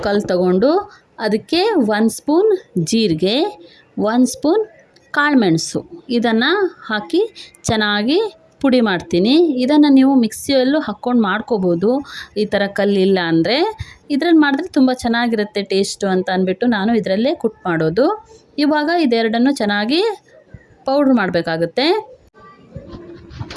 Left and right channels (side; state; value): both; identical; correlation 1.00